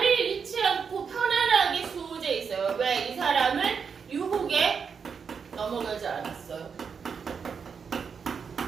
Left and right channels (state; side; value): quieter; left; 6.2 dB